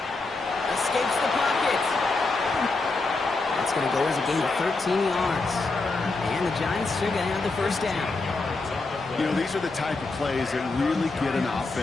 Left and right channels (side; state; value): right; quieter; 3.6 dB